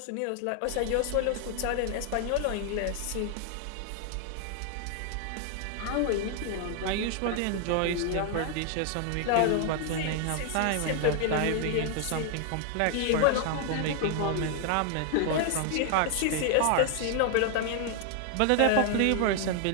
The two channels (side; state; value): both; different; correlation 0.00